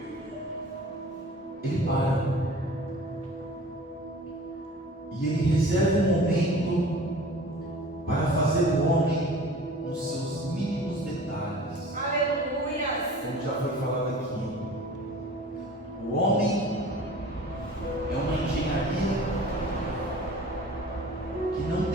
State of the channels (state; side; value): normal; both; correlation 0.44